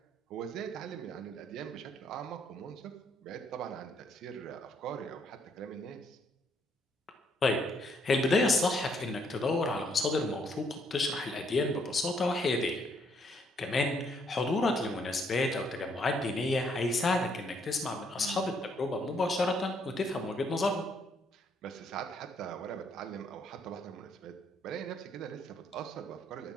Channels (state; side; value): normal; both; correlation 0.70